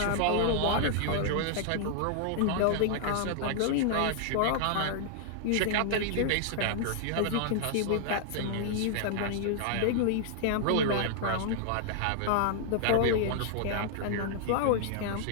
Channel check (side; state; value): both; different; correlation -0.01